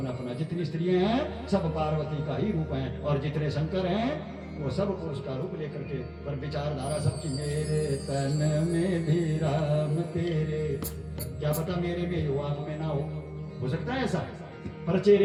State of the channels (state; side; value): identical; both; correlation 1.00